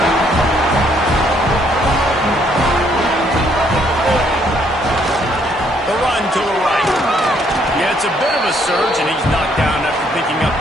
The run to the right. Yeah, it's a bit of a surge, and he's knocked down after picking up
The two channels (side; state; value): both; normal; correlation 0.68